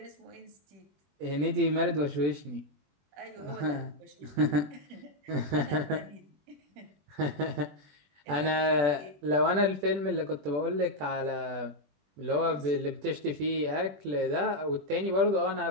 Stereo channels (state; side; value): late; left; 21 ms